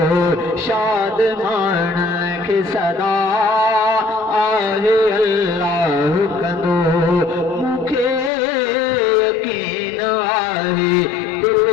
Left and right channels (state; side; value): drops out; right; at 8.3 s